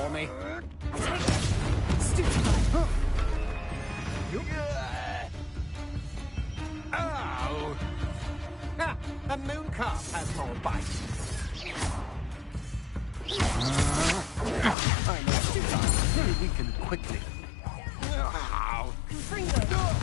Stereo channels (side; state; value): right; drops out; at 14.8 s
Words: me. Oh! Ah, a moon calf has more bite. I know sometimes very weak and quickly. Ow!